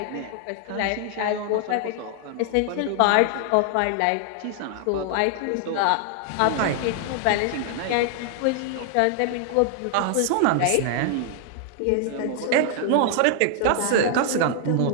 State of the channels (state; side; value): different; both; correlation 0.00